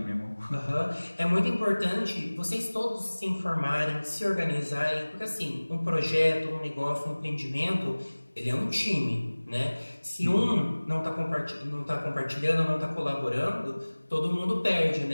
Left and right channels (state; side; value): inverted; both; correlation -1.00